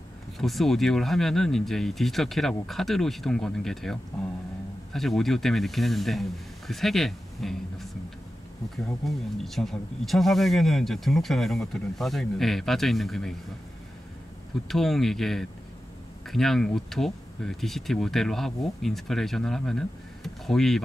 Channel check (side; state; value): both; normal; correlation 0.92